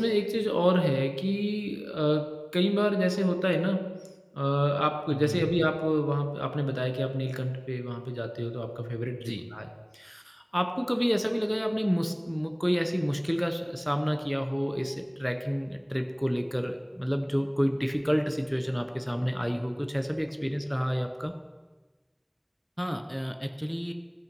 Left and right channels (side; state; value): both; identical; correlation 1.00